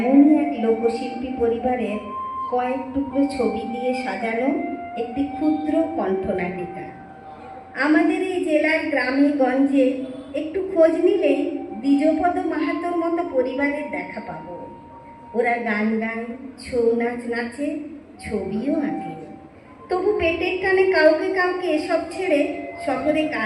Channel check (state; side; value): identical; both; correlation 1.00